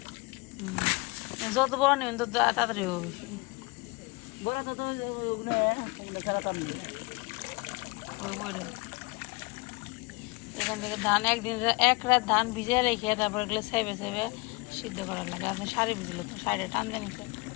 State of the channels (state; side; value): quieter; right; 25.1 dB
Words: যত বড় নেবেন তত তাড়াতাড়ি হবে। এখান থেকে ধান এক রাত ধান ভিজে রেখে তারপর এগুলো সেবে সেবে সিদ্ধ করার লাগে। আপনি শাড়ি ভিজলো তো শাড়িটা টান দেন